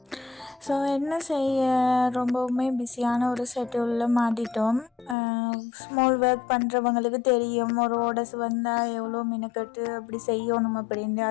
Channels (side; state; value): right; drops out; at 5.2 s